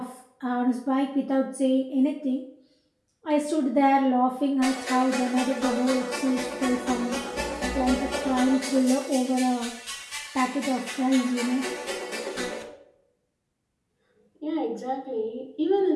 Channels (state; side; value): identical; both; correlation 1.00